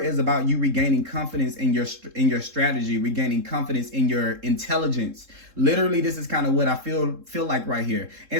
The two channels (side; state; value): left; late; 3.7 ms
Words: about you regaining confidence in your strategy, regaining confidence in your intelligence. Literally, this is kind of what I feel like right here.